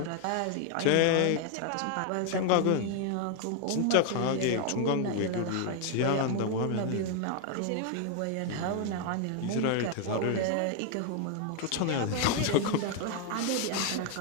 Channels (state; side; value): different; both; correlation 0.00